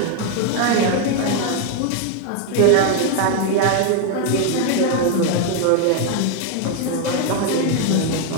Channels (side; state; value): both; different; correlation 0.01